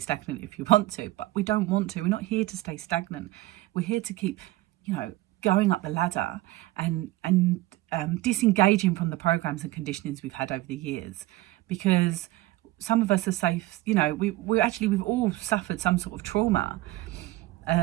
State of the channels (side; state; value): left; quieter; 17.3 dB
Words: if you want to, but we don't want to. We're not here to stay stagnant. We're here to keep, you know, going up the ladder and disengaging from the programs and conditionings we've had over the years, because some of us are safe. You know, we've all suffered some sort of trauma,